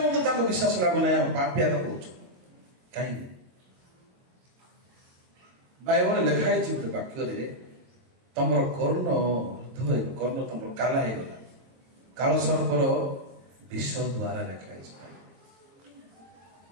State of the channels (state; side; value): late; left; 23 ms